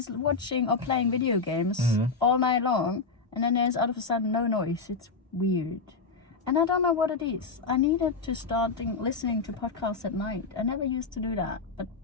watching or playing video games all night long, and then there's all of a sudden no noise, it's weird. And I don't know what it is. I needed to start listening to podcasts at night. I never used to do that. But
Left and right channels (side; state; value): right; quieter; 4.4 dB